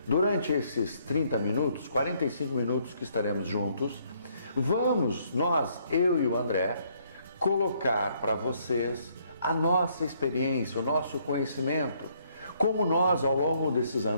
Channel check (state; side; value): inverted; both; correlation -0.69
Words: Durante esses 30 minutos, 45 minutos que estaremos juntos, vamos, eu e o André, colocar para vocês a nossa experiência, o nosso conhecimento, como nós, ao longo desses